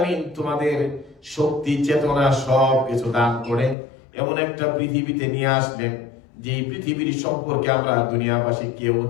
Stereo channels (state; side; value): drops out; right; at 3.8 s